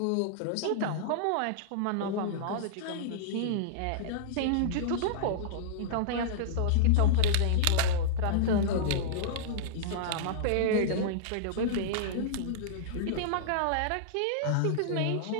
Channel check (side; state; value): both; different; correlation -0.02